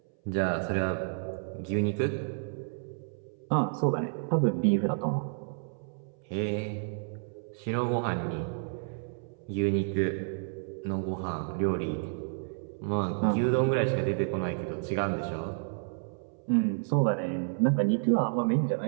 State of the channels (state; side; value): silent; left; 58 dB below the other